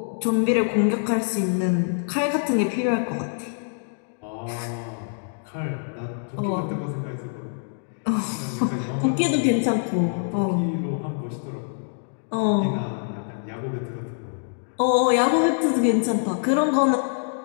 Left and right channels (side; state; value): right; silent; digital silence